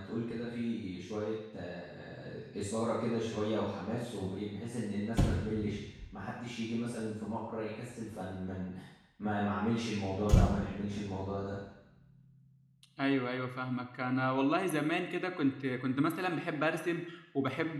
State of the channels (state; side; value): identical; both; correlation 1.00